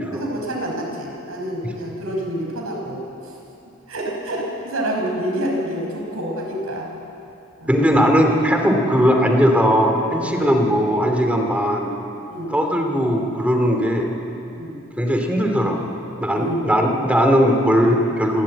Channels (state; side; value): normal; both; correlation 0.70